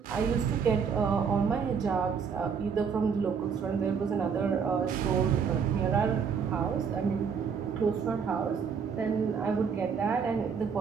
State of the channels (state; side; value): quieter; left; 6.4 dB